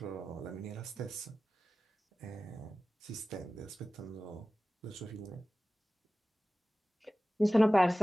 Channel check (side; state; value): both; normal; correlation 0.96